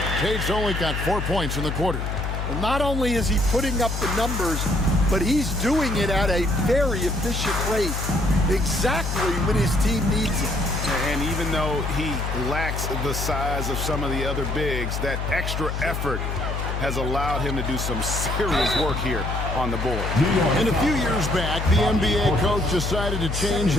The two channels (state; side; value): noise; left; hum, 3 dB below the sound